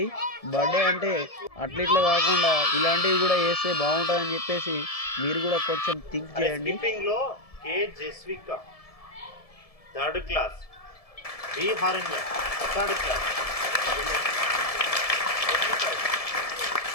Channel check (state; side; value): late; right; 1.7 ms